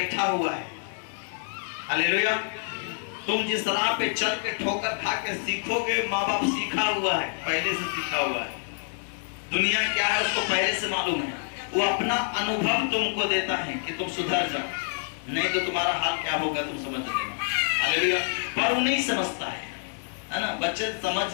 हुआ है। हालेलुया। तुम जिस राह पे चल के ठोकर खा के सीखोगे, माँ बाप सीखा हुआ है, पहले से सीखा हुआ है। दुनिया क्या है उसको पहले से मालूम है, वो अपना अनुभव तुमको देता है कि तुम सुधर जाओ, नहीं तो तुम्हारा हाल क्या होगा तुम समझ लेना। हालेलुया। पर वो नहीं समझता है ना, बच्चे समझ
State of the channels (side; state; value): right; silent; 60 dB below the other